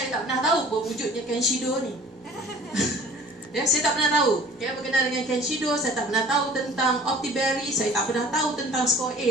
tak pernah tahu pun wujudnya Kenshido ni. Ya, saya tak pernah tahu. Ya, berkenal dengan Kenshido, saya tak pernah tahu tentang Optiberry, saya tak pernah tahu tentang Score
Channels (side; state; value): both; normal; correlation 0.48